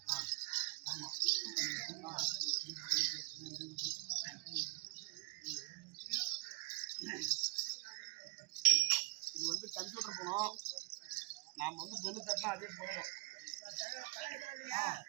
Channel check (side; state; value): left; quieter; 27.7 dB